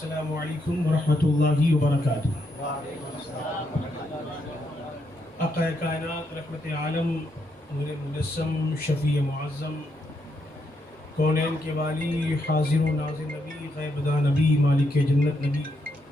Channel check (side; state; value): both; normal; correlation 0.79